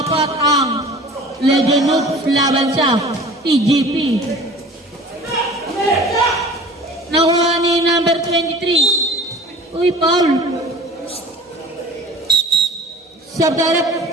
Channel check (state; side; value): normal; both; correlation 0.43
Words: 4 ang Legend Hoops laban sa TGP. Nakuha ni number 23. Uy, foul. Sub-direct.